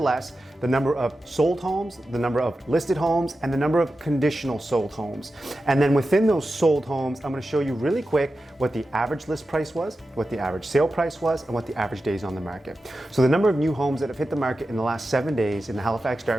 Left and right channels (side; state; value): both; normal; correlation 0.92